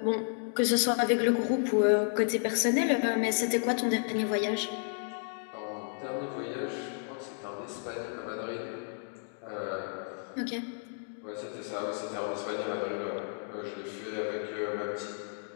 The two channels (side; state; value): right; silent; 56 dB below the other